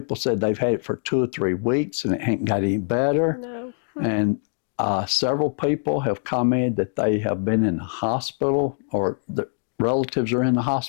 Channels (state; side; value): silent; right; digital silence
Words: said they've had it for 2 or 3 weeks and it ain't got any better. No. And several people have commented that they have been in the hospital or the relatives are in the